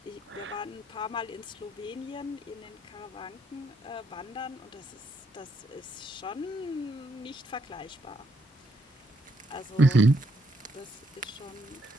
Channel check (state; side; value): normal; both; correlation 0.74